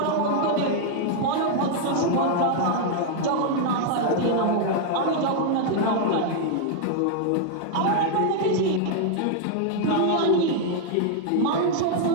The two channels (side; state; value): both; different; correlation 0.00